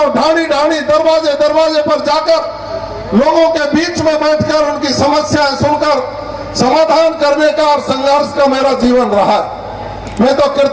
ढाणी ढाणी दरवाजे दरवाजे पर जाकर लोगों के बीच में बैठकर उनकी समस्याएं सुनकर समाधान करने का और संघर्ष का मेरा जीवन रहा। मैं तो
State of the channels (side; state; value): both; identical; correlation 1.00